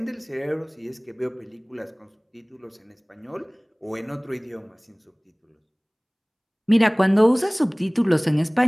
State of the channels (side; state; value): both; identical; correlation 1.00